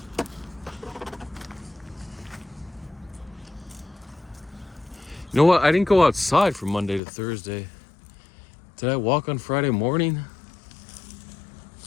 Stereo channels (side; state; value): right; drops out; at 7.0 s